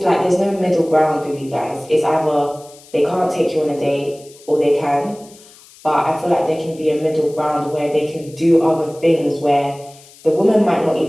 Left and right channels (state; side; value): noise; left; hiss, 24 dB below the sound